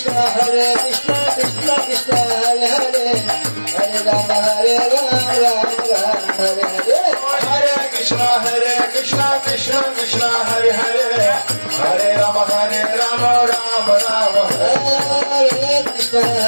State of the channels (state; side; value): inverted; both; correlation -1.00